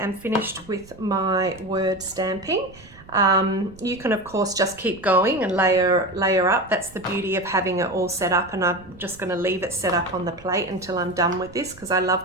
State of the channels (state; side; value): noise; right; rumble, 22 dB below the sound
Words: am finished with my word stamping. You can of course just keep going and layer up. That's the beauty of having it all set up, and I'm just going to leave it set up on the plate until I'm done with this, because I